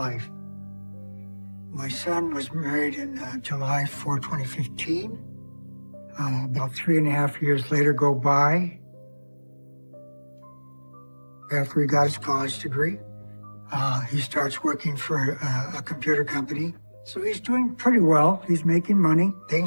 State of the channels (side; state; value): both; inverted; correlation -1.00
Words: My son was married in July 4, 2015. About 3.5 years later go by. After he got his college degree, he starts working for a computer company. So he's doing pretty well. He's making money.